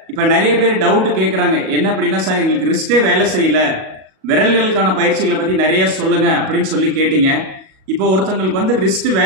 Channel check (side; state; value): left; late; 37 ms